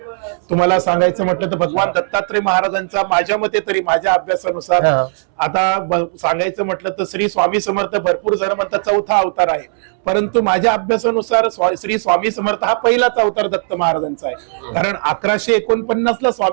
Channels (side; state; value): left; silent; 68 dB below the other